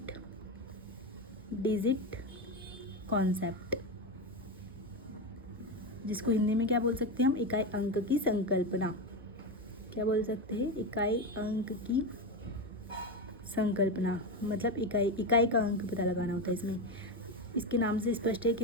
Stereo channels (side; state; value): both; normal; correlation 0.14